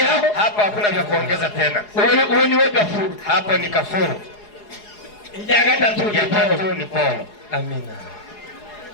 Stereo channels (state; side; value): late; right; 4.8 ms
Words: Hapa hakuna vya kuongeza tena. Uwe ni wewe Gafuru. Hapo ni Gafuru. Ya tatu ni Paulo. Amina.